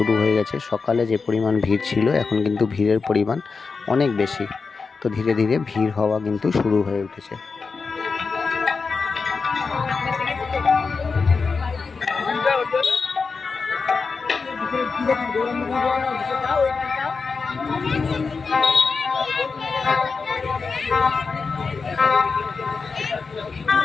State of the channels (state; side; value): quieter; right; 4.7 dB